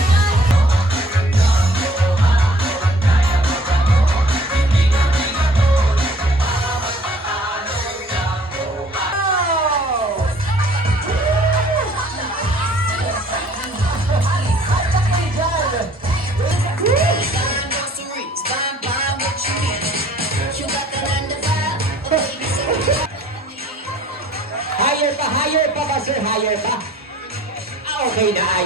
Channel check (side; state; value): both; normal; correlation 0.55